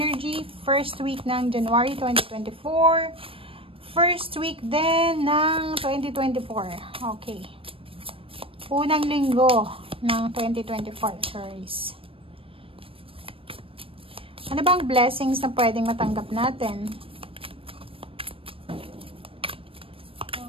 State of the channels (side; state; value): left; late; 0.26 ms